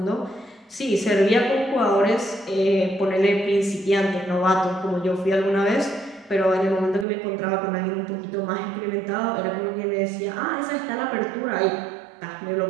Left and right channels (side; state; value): left; drops out; at 7.1 s